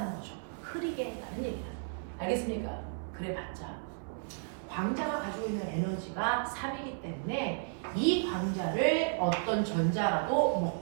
거죠. 흐리게 했다는 얘기다. 알겠습니까? 그래봤자 광자가 가지고 있는 에너지가 3이기 때문에 이 광자를 어떤 전자라도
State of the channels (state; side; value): silent; left; 55 dB below the other